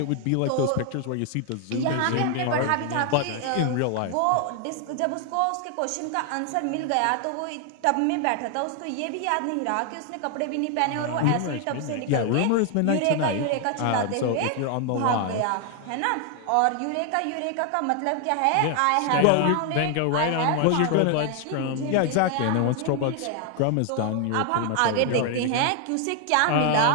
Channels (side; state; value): both; different; correlation 0.00